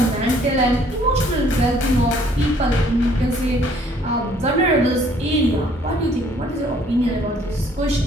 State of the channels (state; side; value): normal; both; correlation 0.60